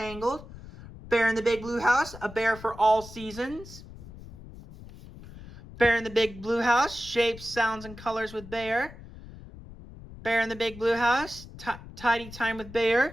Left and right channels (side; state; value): left; noise; rumble, 16 dB below the sound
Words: Bear in the Big Blue House, A Bear for All Seasons, Bear in the Big Blue House, Shapes, Sounds, and Colors with Bear, Bear in the Big Blue House, Tidy Time with